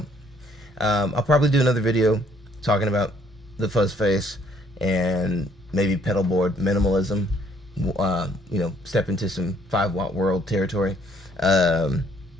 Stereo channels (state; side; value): normal; both; correlation 0.64